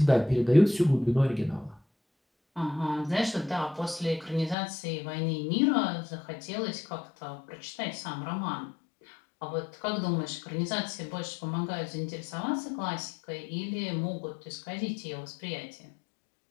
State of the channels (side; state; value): right; drops out; at 4.5 s